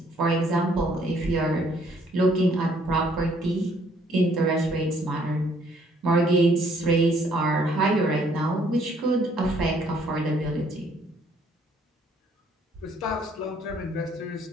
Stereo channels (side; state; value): both; normal; correlation 0.64